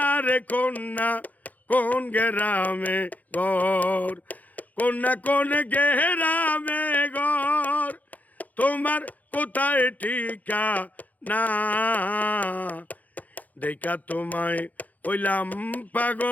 রে কন্যা কোন গেরামে ঘর কোন গেরামে ঘর তোমার কোথায় ঠিকানা দেইখা তোমায় হইলাম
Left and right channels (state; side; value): late; right; 0.079 ms